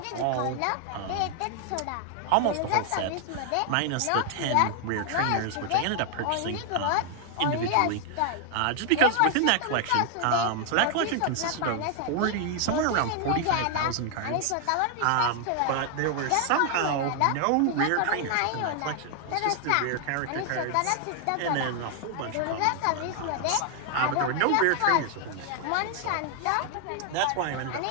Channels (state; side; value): different; both; correlation 0.00